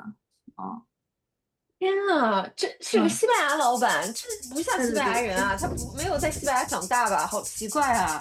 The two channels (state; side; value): identical; both; correlation 1.00